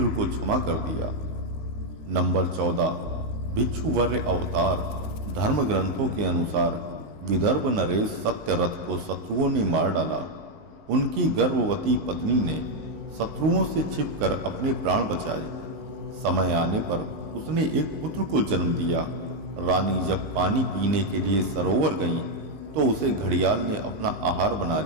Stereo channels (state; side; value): late; left; 19 ms